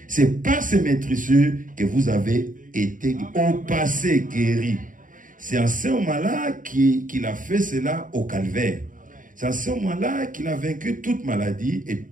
C'est par ces maîtrisures que vous avez été au passé guéri. C'est en ce moment-là qu'il a fait cela au calvaire. C'est en ce moment-là qu'il a vaincu toute maladie et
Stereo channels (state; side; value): late; left; 0.39 ms